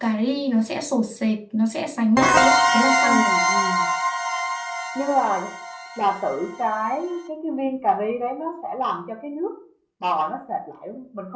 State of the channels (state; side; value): identical; both; correlation 1.00